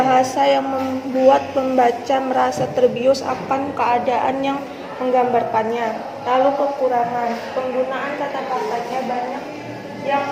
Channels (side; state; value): both; identical; correlation 1.00